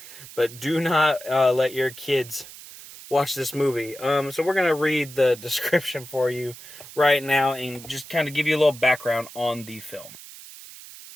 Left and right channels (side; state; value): right; noise; hiss, 16 dB below the sound